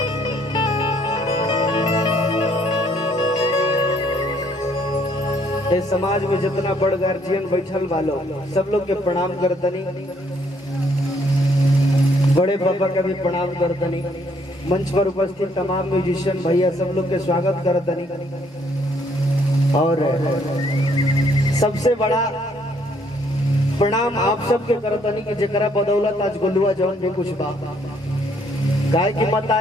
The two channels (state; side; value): normal; both; correlation 0.67